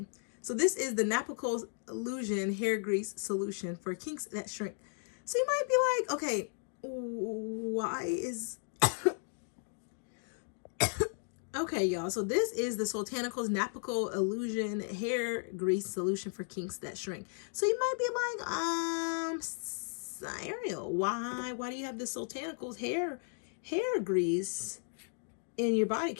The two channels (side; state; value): right; silent; 54 dB below the other